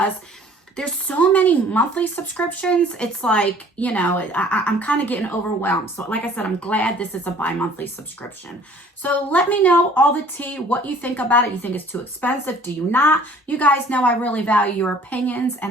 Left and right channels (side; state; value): both; normal; correlation 0.53